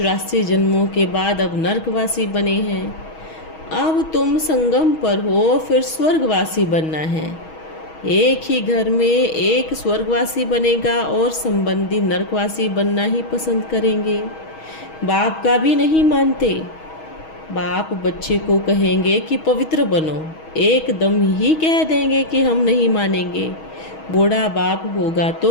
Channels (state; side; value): late; right; 6.3 ms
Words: जन्मों के बाद अब नरकवासी बने हैं। अब तुम संगम पर हो, फिर स्वर्गवासी बनना है। एक ही घर में एक स्वर्गवासी बनेगा और संबंधी नरकवासी बनना ही पसंद करेंगे। बाप का भी नहीं मानते। बाप बच्चे को कहेंगे कि पवित्र बनो, एकदम ही कह देंगे कि हम नहीं मानेंगे। बूढ़ा बाप होगा